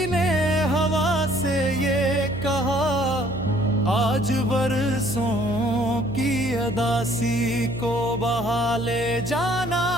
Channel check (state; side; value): noise; right; hum, 10 dB below the sound